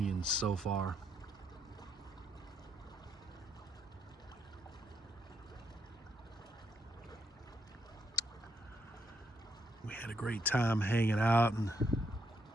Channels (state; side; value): normal; both; correlation 0.76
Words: so far. We had a great time hanging out and